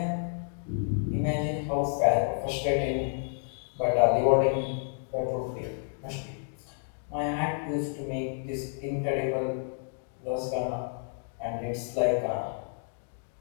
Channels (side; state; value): right; silent; digital silence